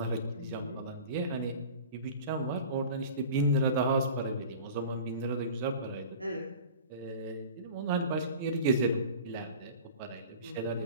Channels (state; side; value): inverted; both; correlation -0.39